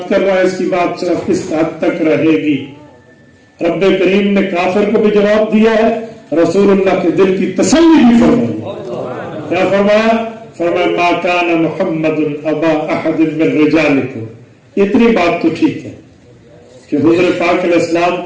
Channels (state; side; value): identical; both; correlation 1.00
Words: کر رہا ہے اس کی بات صرف کس حد تک رہے گی۔ رب کریم نے کافر کو بھی جواب دیا ہے، رسول اللہ کے دل کی تسلی بھی فرمائی۔ کیا فرمایا؟ فرمایا ما کان محمد ابا احد من رجالکم۔ اتنی بات تو ٹھیک ہے کہ حضور پاک علیہ السلام